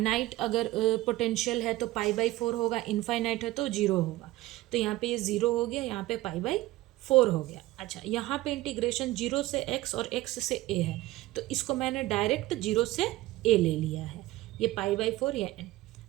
अगर पोटेंशियल है तो π/4 होगा, इनफाइनाइट है तो 0 होगा। तो यहाँ पे ये 0 हो गया, यहाँ पे π/4 हो गया। अच्छा, यहाँ पे इंटीग्रेशन 0 से x और x से a है, तो इसको मैंने डायरेक्ट 0 से a ले लिया है, ये π/4 या n।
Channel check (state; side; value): quieter; left; 17.7 dB